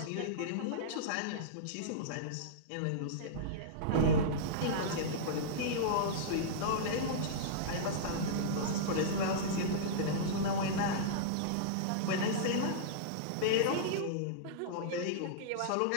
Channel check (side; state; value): both; different; correlation -0.03